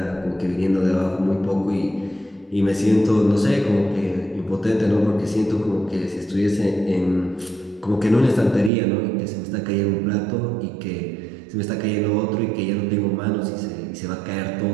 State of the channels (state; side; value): drops out; left; at 8.7 s